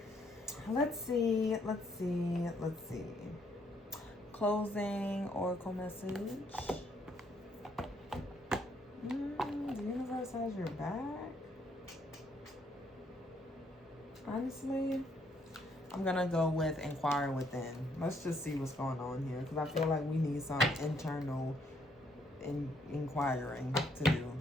Let's see. Closing oracle message. The universe has your back. Honestly, I'm gonna go with inquire within. Let's just see what's going on here, because I feel like we need some internal inquiring to do.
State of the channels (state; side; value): normal; both; correlation 0.70